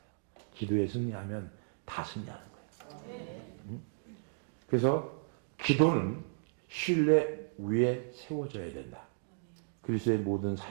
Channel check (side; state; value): left; silent; digital silence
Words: 기도에 승리하면 다 승리하는 거예요. 그래서 기도는 신뢰 위에 세워져야 된다. 그리스도의 모든